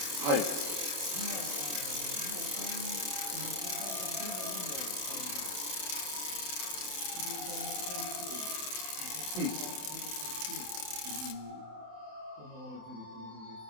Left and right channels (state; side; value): late; left; 27 ms